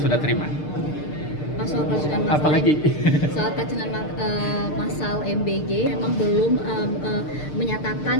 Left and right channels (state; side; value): late; right; 6.6 ms